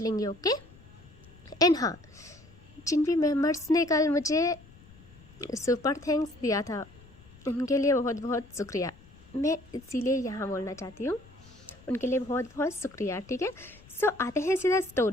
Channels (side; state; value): left; noise; rumble, 23 dB below the sound